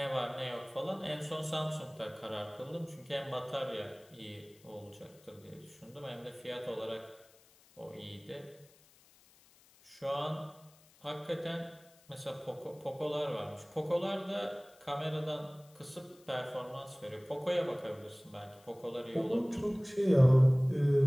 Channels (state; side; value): noise; left; hiss, 27 dB below the sound